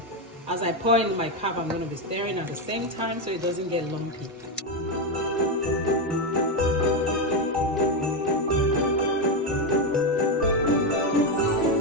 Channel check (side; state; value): both; normal; correlation 0.09